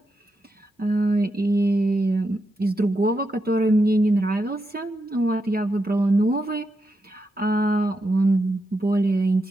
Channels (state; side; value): normal; both; correlation 0.85